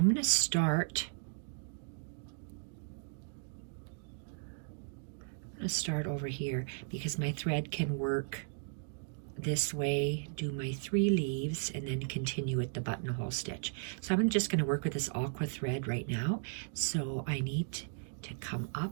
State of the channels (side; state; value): left; silent; digital silence